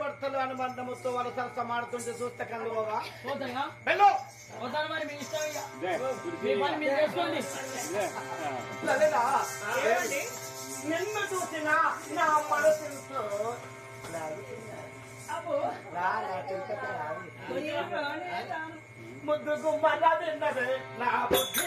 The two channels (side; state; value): both; identical; correlation 1.00